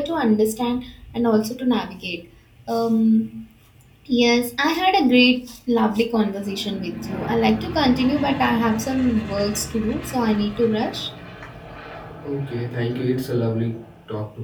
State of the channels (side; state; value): both; identical; correlation 1.00